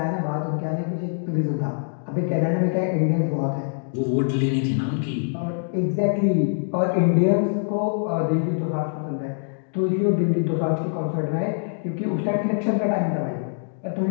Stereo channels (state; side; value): silent; right; digital silence